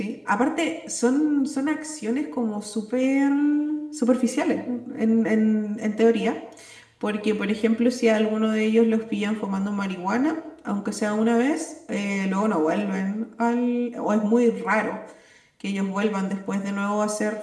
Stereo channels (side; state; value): both; identical; correlation 1.00